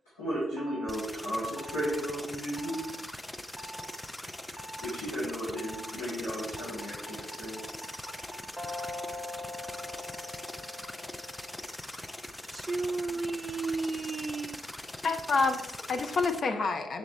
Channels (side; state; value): both; normal; correlation 0.82